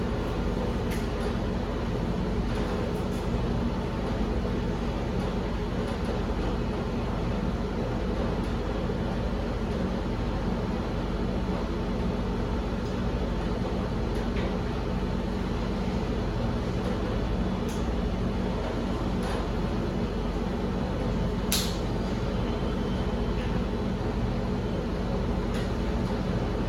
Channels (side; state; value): both; identical; correlation 1.00